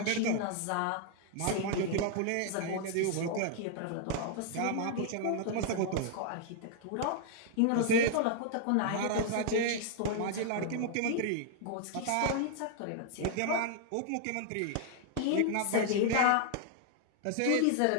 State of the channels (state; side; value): different; both; correlation 0.00